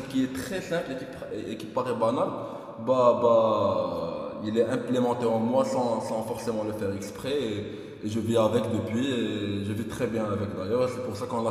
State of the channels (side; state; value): both; identical; correlation 1.00